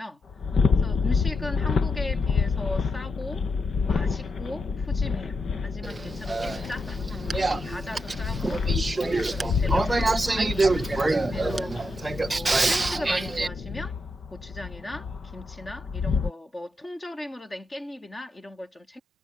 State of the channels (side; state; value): both; normal; correlation 0.84